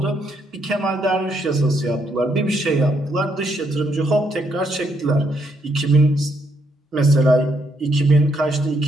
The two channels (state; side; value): normal; both; correlation 0.74